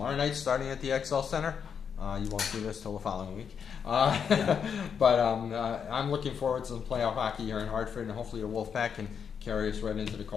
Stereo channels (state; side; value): quieter; right; 7.1 dB